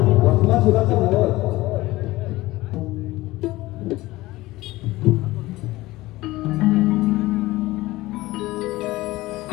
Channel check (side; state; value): right; quieter; 18.6 dB